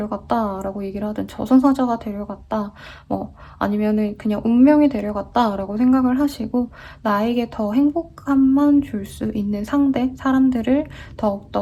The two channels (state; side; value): identical; both; correlation 1.00